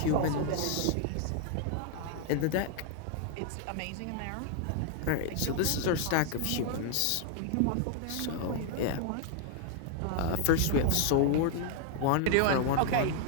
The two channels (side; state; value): both; different; correlation 0.00